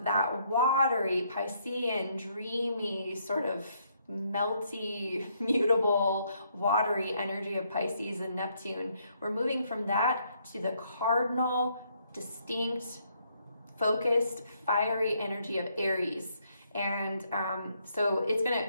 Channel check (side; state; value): both; inverted; correlation -0.72